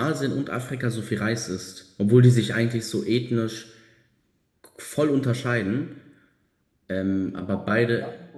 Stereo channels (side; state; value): both; identical; correlation 1.00